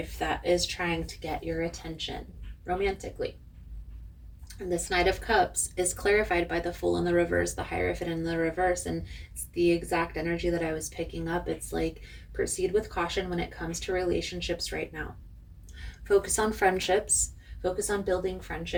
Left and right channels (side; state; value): both; identical; correlation 1.00